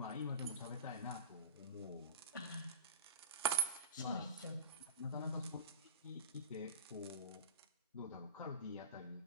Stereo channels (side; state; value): both; inverted; correlation -0.33